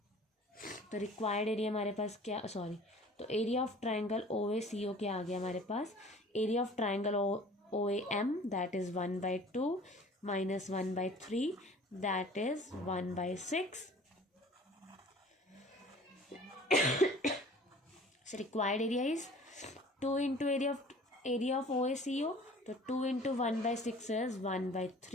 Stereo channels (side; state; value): both; normal; correlation 0.47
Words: तो रिक्वायर्ड एरिया हमारे पास क्या, सॉरी, तो एरिया ऑफ ट्राइंगल OACO क्या आ गया हमारे पास, area of triangle OAM that is 1/2 minus 1/3 that is 1/6। So required area is 2 into area of OACO, तो 2 into 1/6 is